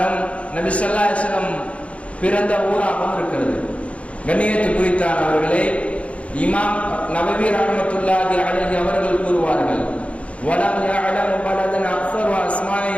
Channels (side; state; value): right; late; 0.063 ms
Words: நபி ஸல்லல்லாஹு அலைஹி வஸல்லம் பிறந்த ஊராகவும் இருக்கிறது. கண்ணியத்து குறித்தானவர்களே, இமாம் நபவி ரஹ்மத்துல்லாஹி அலைஹி அவர்கள் கூறுவார்கள், வலம் யஅலமு பலதன் அக்ஸரு அஸ்மாஇ